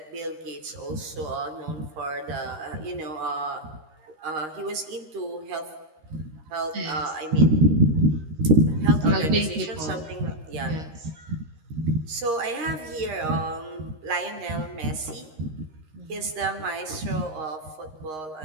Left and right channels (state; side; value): late; left; 13 ms